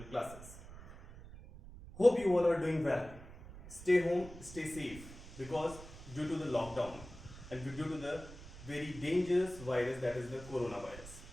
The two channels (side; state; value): right; noise; rumble, 15 dB below the sound